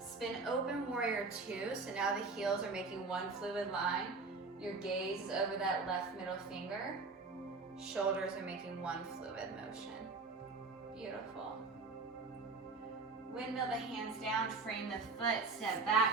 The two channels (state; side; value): quieter; left; 4.0 dB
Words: open, warrior two. So now the heels are making one fluid line. Your gaze is over that left middle finger. Shoulders are making one fluid motion. Beautiful. Windmill the hands down, frame the foot, step